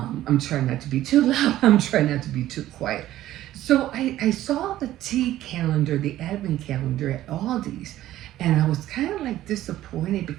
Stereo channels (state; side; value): quieter; left; 14.0 dB